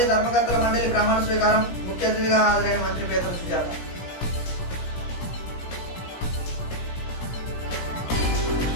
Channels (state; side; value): late; right; 17 ms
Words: ధర్మకర్తల మండలి ప్రమాణ స్వీకారం. ముఖ్య అతిథిగా హాజరైన మంత్రి పేతల సుజాత.